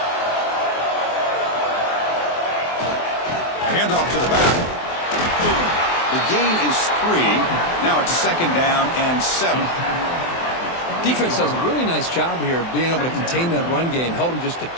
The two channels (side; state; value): right; late; 24 ms